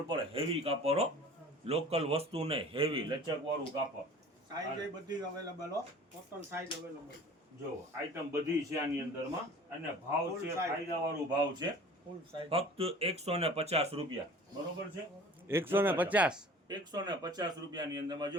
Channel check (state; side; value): normal; both; correlation 0.45